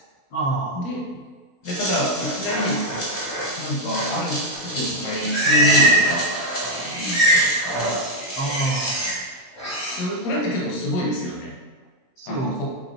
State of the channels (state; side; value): late; right; 16 ms